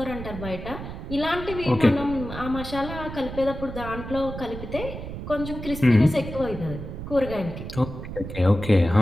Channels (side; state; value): right; noise; rumble, 9 dB below the sound